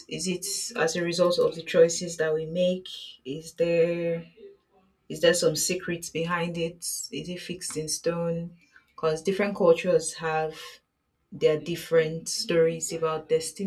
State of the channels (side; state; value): both; identical; correlation 1.00